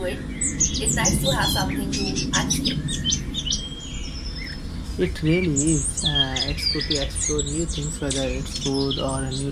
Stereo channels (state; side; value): identical; both; correlation 1.00